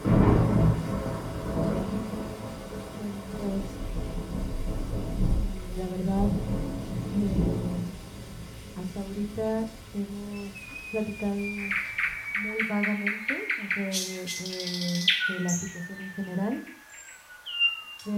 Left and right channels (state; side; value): identical; both; correlation 1.00